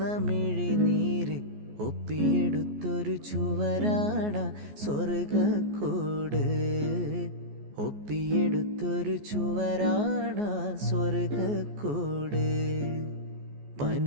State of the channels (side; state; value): left; late; 14 ms